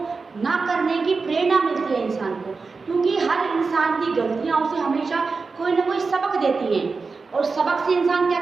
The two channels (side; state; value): left; quieter; 4.4 dB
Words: ना करने की प्रेरणा मिलती है इंसान को। क्योंकि हर इंसान की गलतियां उसे हमेशा कोई ना कोई सबक देती हैं, और सबक से इंसान क्या